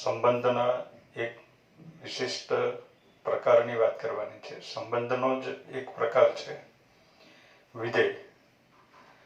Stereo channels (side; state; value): both; identical; correlation 1.00